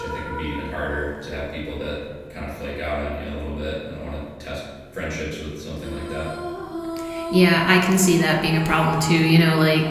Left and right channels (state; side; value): identical; both; correlation 1.00